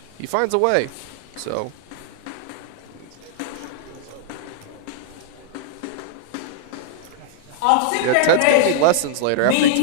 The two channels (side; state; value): both; different; correlation -0.01